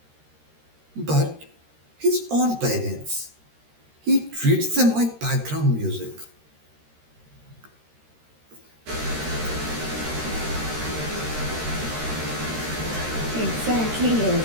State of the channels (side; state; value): left; late; 13 ms